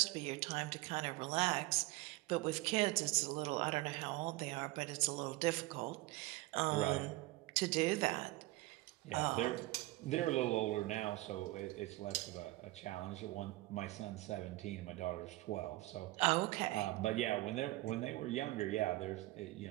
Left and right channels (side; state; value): left; quieter; 19.4 dB